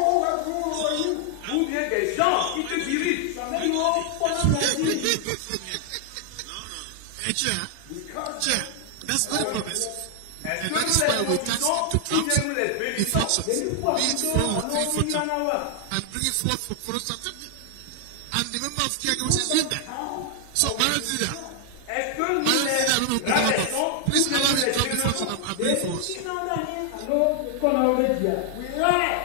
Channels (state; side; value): different; both; correlation 0.00